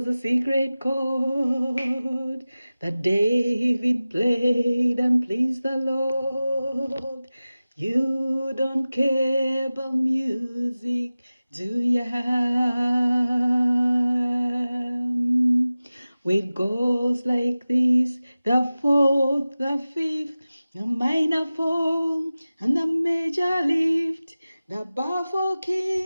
a secret chord that David played and pleased the Lord. You don't care about music, do ya? It goes like this: the fourth, the fifth, the minor fall, and the major lift, the baffled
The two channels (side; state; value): both; inverted; correlation -0.96